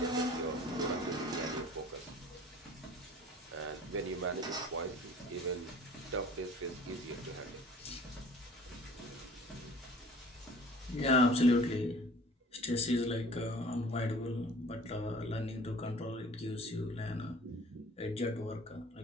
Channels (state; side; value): normal; both; correlation 0.48